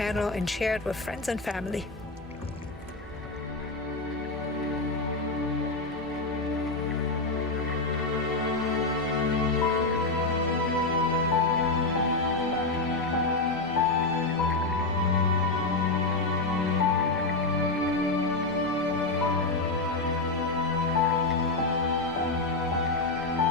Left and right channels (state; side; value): quieter; right; 3.3 dB